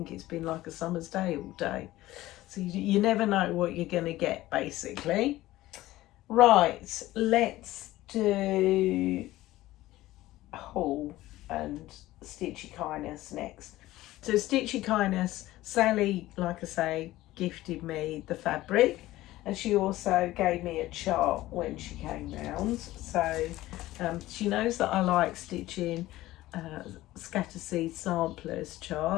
it's been like a summer's day all day. So you never know what you're going to get, basically. Right, let's do haul and Stitchy Kindness next. So Stitchy Kindness, Sally, like I say, gifted me the fabric. And she also gave me a chart when she came round. So she knows that I like stitching scatter seed samplers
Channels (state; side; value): quieter; right; 16.5 dB